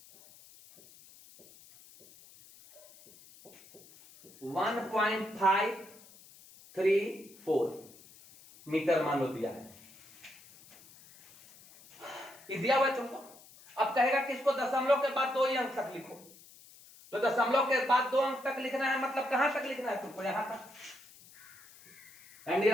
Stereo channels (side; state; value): left; noise; hiss, 22 dB below the sound